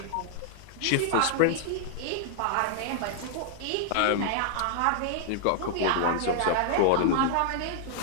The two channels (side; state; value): both; different; correlation 0.00